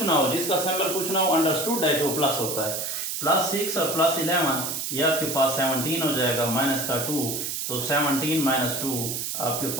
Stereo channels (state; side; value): noise; right; hiss, 3 dB below the sound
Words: ना हो, जिसका सिंबल कुछ ना हो अंडरस्टूड है कि वो प्लस होता है, +6 और +11 ये आपके पास 17 हो जाएगा, माइनस का 2, तो 17 - 2 आपके